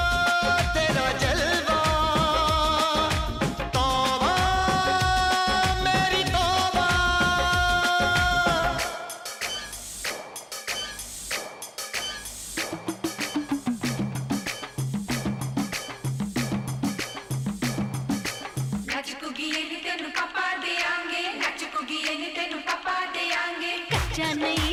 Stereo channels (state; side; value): identical; both; correlation 1.00